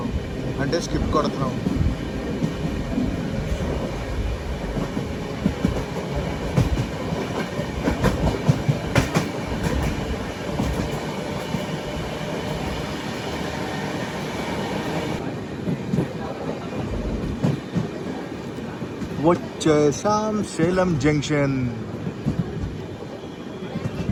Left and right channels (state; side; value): identical; both; correlation 1.00